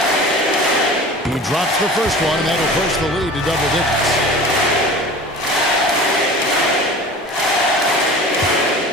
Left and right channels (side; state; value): both; normal; correlation 0.39